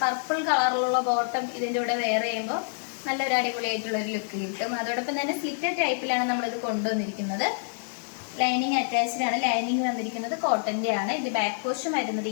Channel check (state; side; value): silent; right; 60 dB below the other